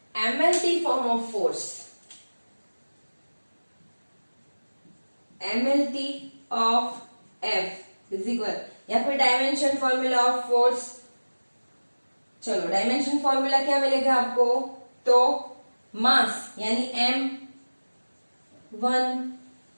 MLT form of force. MLT of F is equal, या फिर डायमेंशन फॉर्मूला ऑफ फोर्स. चलो, डायमेंशन फॉर्मूला क्या मिलेगा आपको? तो मास यानी m1,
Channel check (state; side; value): inverted; both; correlation -1.00